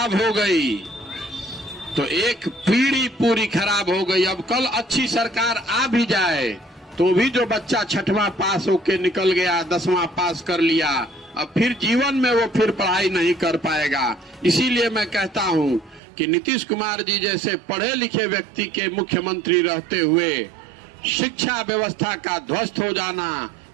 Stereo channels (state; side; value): drops out; left; at 16.0 s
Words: हो गई तो एक पीढ़ी पूरी खराब हो गई। अब कल अच्छी सरकार आ भी जाए तो भी जो बच्चा 6वां पास होके निकल गया, 10वां पास कर लिया, अब फिर जीवन में वो फिर पढ़ाई नहीं कर पाएगा। इसीलिए मैं कहता हूं कि नीतीश कुमार जी जैसे पढ़े लिखे व्यक्ति के मुख्यमंत्री रहते हुए शिक्षा व्यवस्था का ध्वस्त हो जाना,